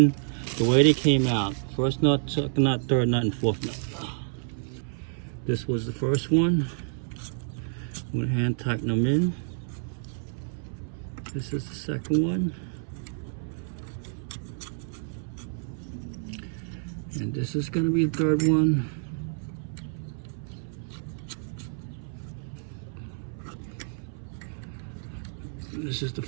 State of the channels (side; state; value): left; silent; 59 dB below the other